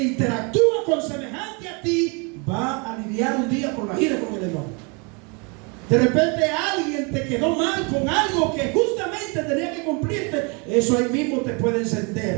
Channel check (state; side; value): quieter; left; 32.4 dB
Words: con semejante a ti, va a lidiar un día con la ira y con el enojo. De repente alguien te quedó mal con algo que justamente tenía que cumplirte. Eso ahí mismo te puede